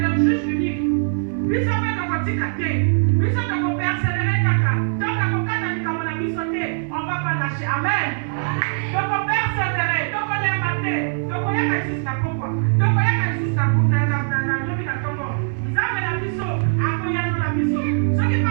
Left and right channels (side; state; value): left; silent; digital silence